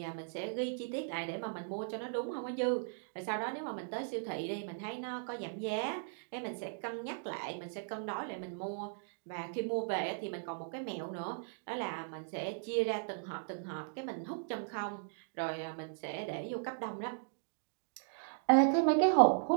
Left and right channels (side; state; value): left; silent; digital silence